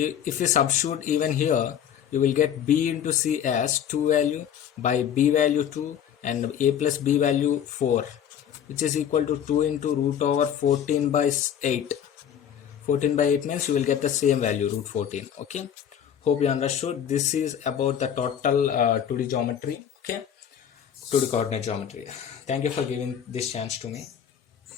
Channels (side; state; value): right; quieter; 9.0 dB